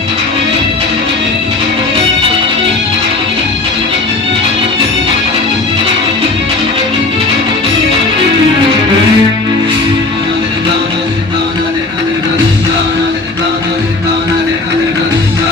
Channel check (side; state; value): right; quieter; 3.3 dB